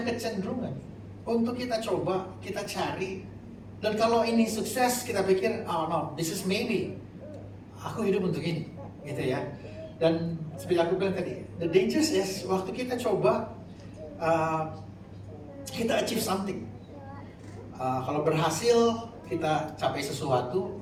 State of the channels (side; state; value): both; identical; correlation 1.00